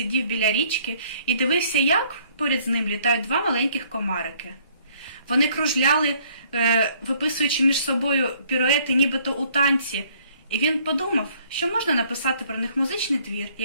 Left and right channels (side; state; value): both; inverted; correlation -0.62